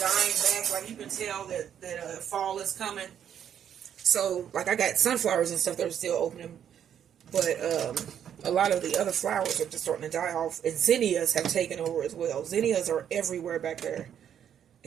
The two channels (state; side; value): quieter; left; 9.2 dB